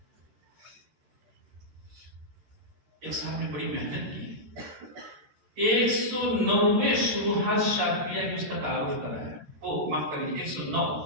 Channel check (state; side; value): late; left; 13 ms